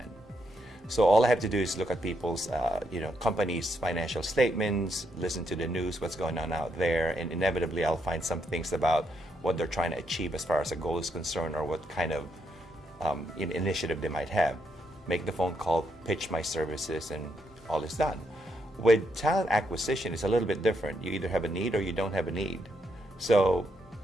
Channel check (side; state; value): both; normal; correlation 0.78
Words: So all I have to do is look at people's, companies' financial statements, listen to the news, what's going on out there, and inevitably I'll find some things about what they're trying to achieve as far as a goal is concerned or what kind of initiative they might have. Make the phone call, pitch my services, and all is done. With talent acquisition, it's a little bit different. You either have a need or you don't have a need. So,